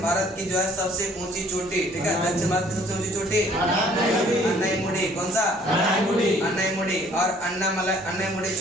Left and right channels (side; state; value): both; normal; correlation 0.58